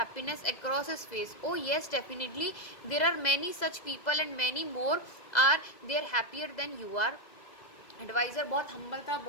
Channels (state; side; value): late; right; 2.0 ms